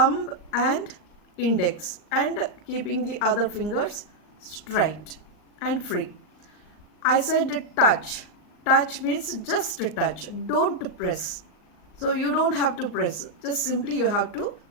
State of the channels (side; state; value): right; late; 39 ms